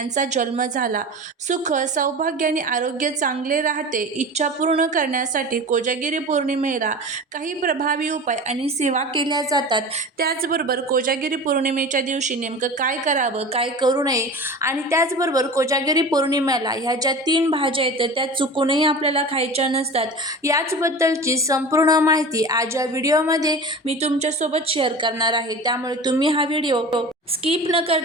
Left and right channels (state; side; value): normal; both; correlation 0.34